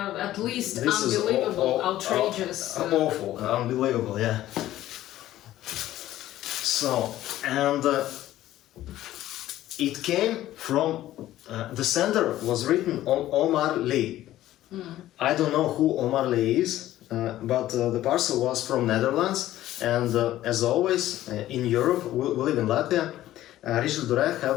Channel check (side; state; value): right; quieter; 14.1 dB